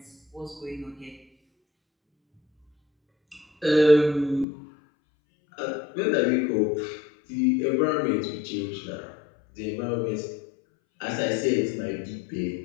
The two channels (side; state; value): right; drops out; at 4.5 s